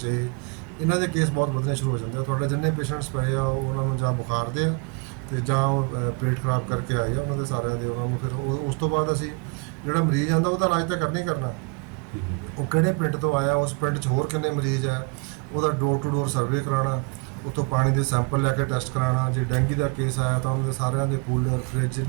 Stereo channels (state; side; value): quieter; left; 32.1 dB